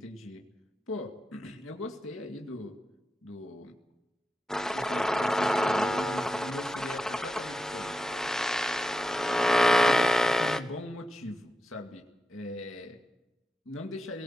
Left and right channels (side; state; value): both; normal; correlation 0.89